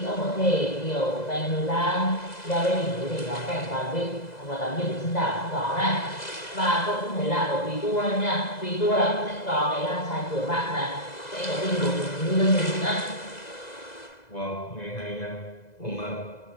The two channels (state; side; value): late; right; 2.0 ms